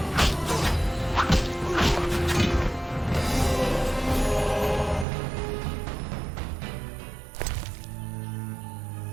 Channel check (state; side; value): drops out; left; at 5.1 s